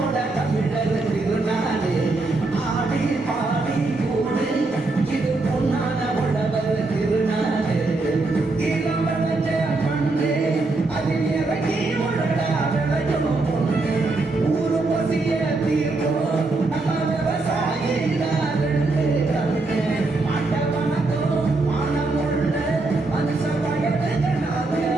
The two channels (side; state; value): left; quieter; 3.3 dB